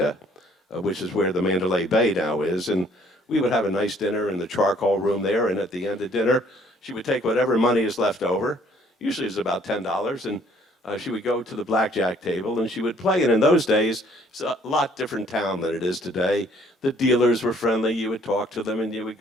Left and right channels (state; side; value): normal; both; correlation 0.61